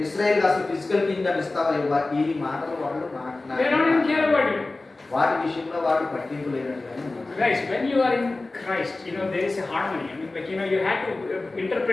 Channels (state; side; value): quieter; right; 3.2 dB